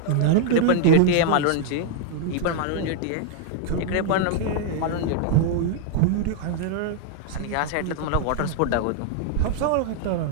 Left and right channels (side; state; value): both; different; correlation 0.00